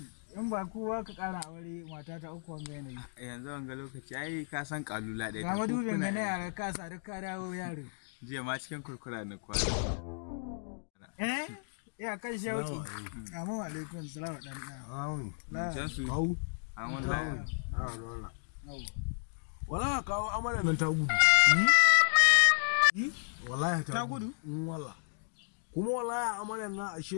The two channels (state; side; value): silent; right; digital silence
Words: In ba kowa ka ƙara aure mata ta uku wanga yanayi. Yanzu wanga lokaci ai ka san kalula ɗaya. Ga madubin ga na yara ka sa duk ka dawo yaro. Jiya ma cikin kurkura na kwana. Ya kan shauki. Assalamu alaikum salamu dan na. Jansu. Kawu. An wallahi. Wala kawo amarya nan ta gudu. Wallahi Ta gudu? Wala. Kuma wallahi amarya nan